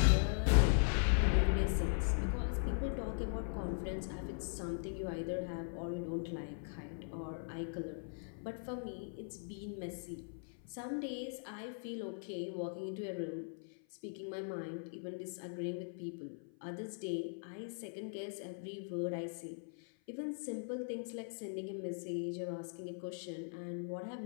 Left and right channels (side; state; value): right; silent; 51 dB below the other